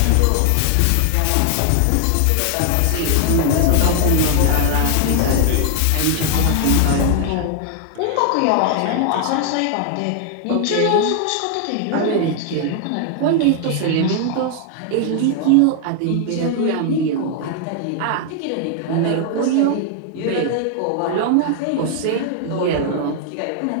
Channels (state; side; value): different; both; correlation 0.00